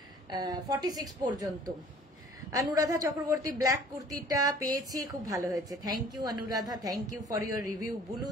46 পর্যন্ত। অনুরাধা চক্রবর্তী ব্ল্যাক কুর্তিটা পেয়েছি, খুব ভালো হয়েছে, thank you Anuradha, thank you for your review.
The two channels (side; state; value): both; normal; correlation 0.51